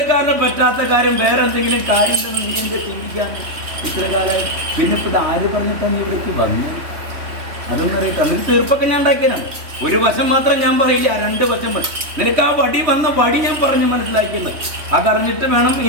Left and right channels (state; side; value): late; left; 3.2 ms